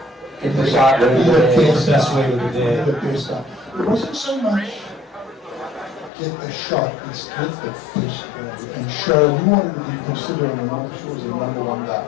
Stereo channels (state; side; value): drops out; right; at 6.1 s